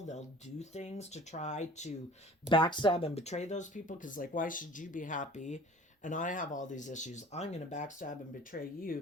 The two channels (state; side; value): normal; both; correlation 0.45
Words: they'll do things to try to backstab and betray those people. Because, like, why should you be happy and I have all these issues? I'm going to backstab and betray